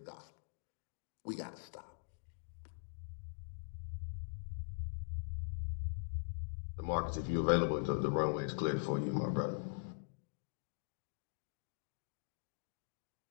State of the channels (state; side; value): silent; right; digital silence